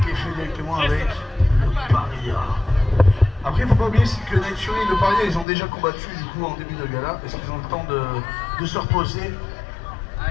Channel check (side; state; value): right; drops out; at 5.5 s